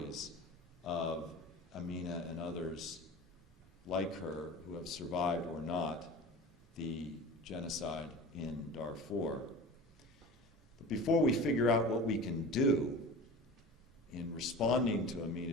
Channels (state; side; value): normal; both; correlation 0.35